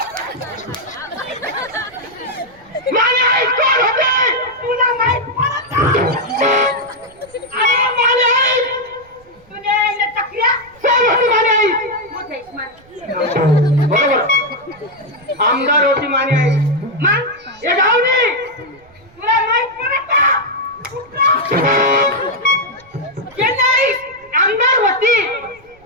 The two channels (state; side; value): noise; right; rumble, 29 dB below the sound